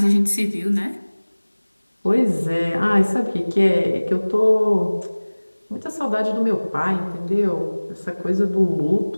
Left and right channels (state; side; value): inverted; both; correlation -1.00